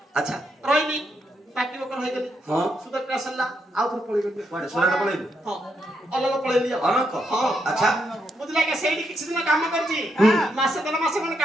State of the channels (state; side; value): normal; both; correlation 0.80